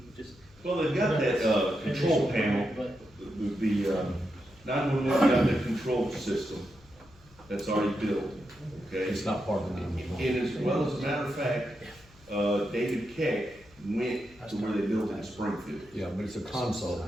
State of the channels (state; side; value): noise; left; hum, 26 dB below the sound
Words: just. Well, they've got that, control panel, But the 911 got that control system that's already built, okay? It's not part of the 911. And as well as a matter of fact, David Keck went to where they built in Springfield. Yeah, but it's a console,